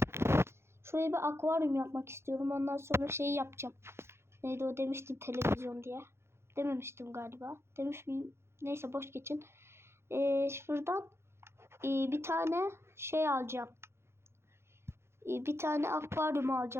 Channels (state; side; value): late; left; 0.12 ms